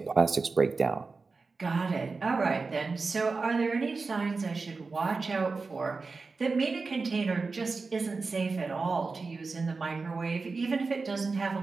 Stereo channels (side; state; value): left; quieter; 4.2 dB